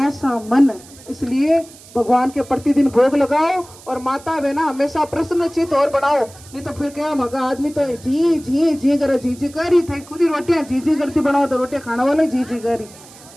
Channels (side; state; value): right; noise; hiss, 21 dB below the sound